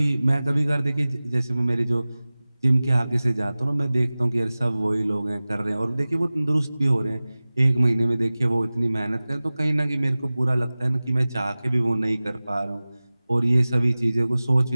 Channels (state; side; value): inverted; both; correlation -0.98